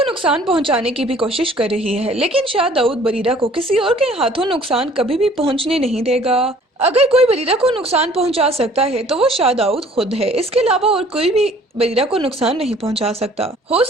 नुकसान पहुंचाने की भी कोशिश कर रही है, लेकिन शाह दाऊद बरीरा को किसी और के हाथों नुकसान कभी भी पहुंचने नहीं देगा। अगर कोई बरीरा को नुकसान पहुंचा सकता है तो वो शाह दाऊद खुद है। इसके अलावा और कोई भी बरीरा को नुकसान नहीं पहुंचा सकता। हो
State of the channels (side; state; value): both; normal; correlation 0.54